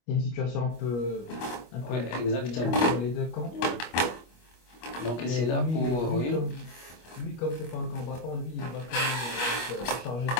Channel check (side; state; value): right; late; 25 ms